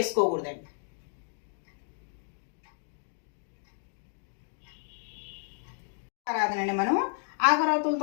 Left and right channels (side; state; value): right; silent; digital silence